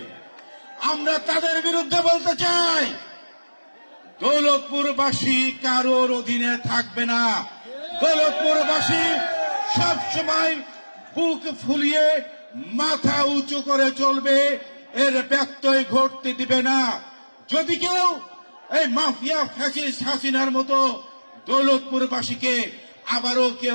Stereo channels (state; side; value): inverted; both; correlation -1.00